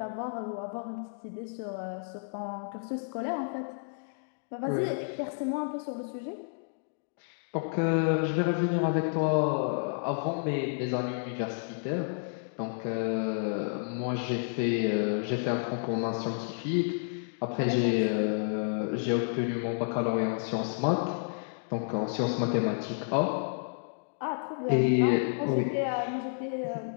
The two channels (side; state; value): right; silent; digital silence